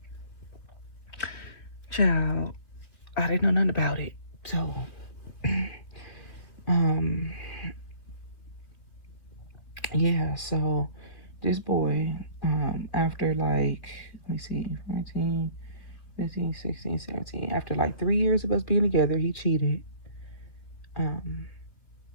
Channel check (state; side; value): late; right; 2.4 ms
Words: child, I didn't know nothing about it. So, yeah, so this boy, after like, let me see, 14, 15, 16, 17, after like 3 years of us being together, he cheated.